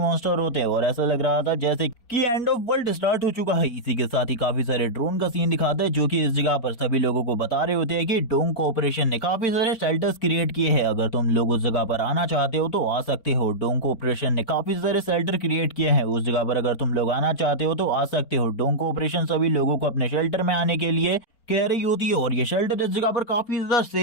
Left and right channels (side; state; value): right; late; 4.3 ms